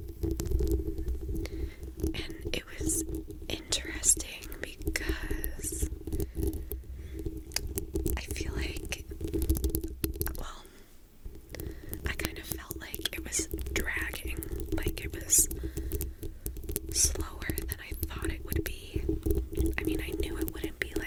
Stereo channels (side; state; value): both; identical; correlation 1.00